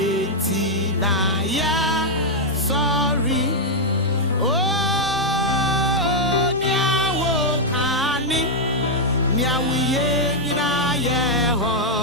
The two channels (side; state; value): both; normal; correlation -0.03